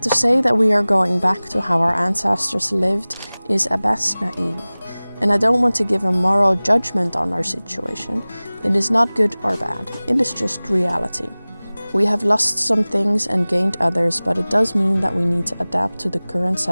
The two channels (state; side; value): inverted; both; correlation -0.99